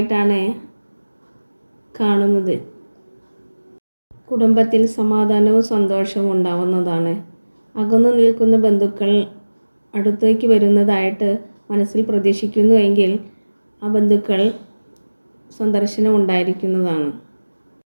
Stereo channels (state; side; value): inverted; both; correlation -1.00